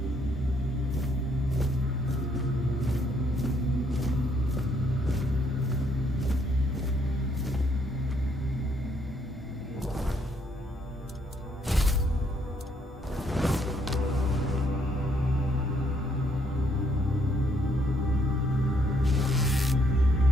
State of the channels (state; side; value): normal; both; correlation 0.70